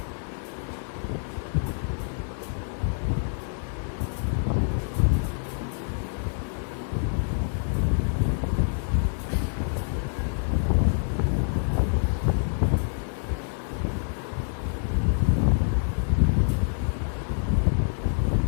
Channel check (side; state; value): right; silent; digital silence